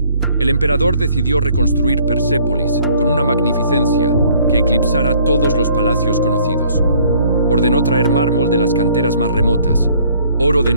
el emperador decidió reconstruir Persépolis con una magnificencia que eclipsara todos los palacios conocidos. Ordenó traer mármol de las canteras más remotas, oro de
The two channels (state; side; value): inverted; both; correlation -0.59